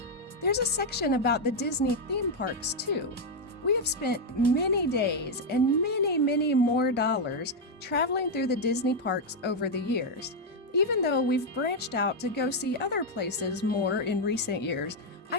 There's a section about the Disney theme parks too. We have spent many days and many more dollars traveling through the Disney parks over the years. Even though we've branched out to go see other places more in recent years,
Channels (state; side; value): normal; both; correlation 0.01